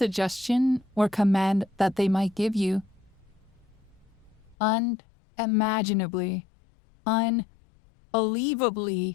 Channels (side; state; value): right; drops out; at 4.5 s